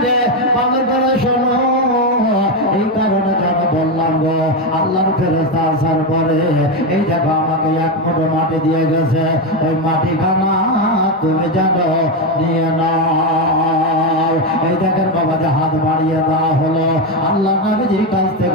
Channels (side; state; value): both; normal; correlation 0.10